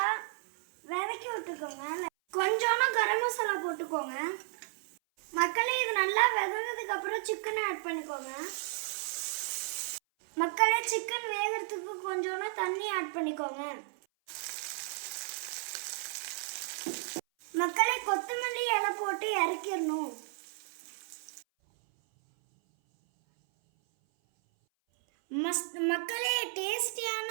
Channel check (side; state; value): left; silent; 55 dB below the other